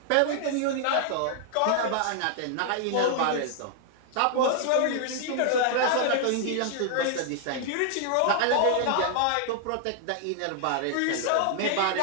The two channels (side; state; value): both; different; correlation 0.00